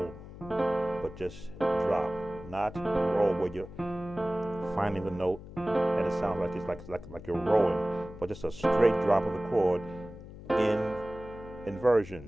but just drop, not roll, where you're finding the note and it sounds like it's like you're rolling, but just a straight drop of the chord in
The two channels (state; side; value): noise; left; hum, 15 dB below the sound